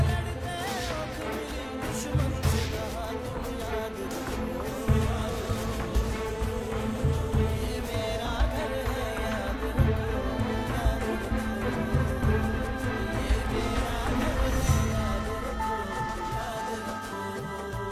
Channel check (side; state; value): both; identical; correlation 1.00